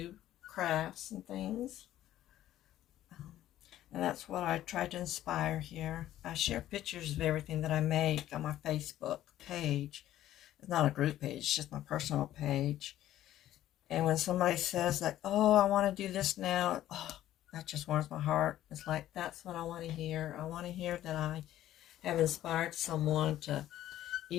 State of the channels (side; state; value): right; quieter; 13.1 dB